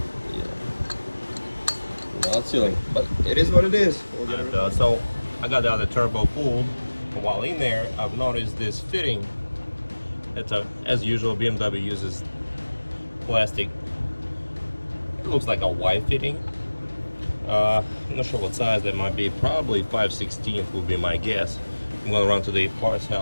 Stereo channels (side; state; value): both; inverted; correlation -1.00